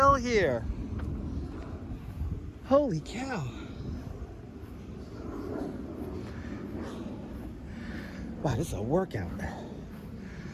here. Holy cow. Wow, this is a workout.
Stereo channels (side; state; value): both; identical; correlation 1.00